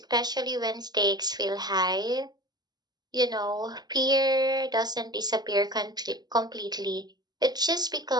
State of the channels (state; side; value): late; left; 0.20 ms